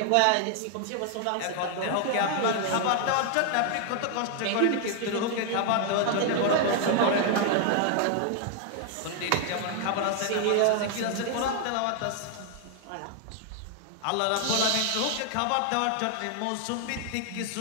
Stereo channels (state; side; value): different; both; correlation 0.00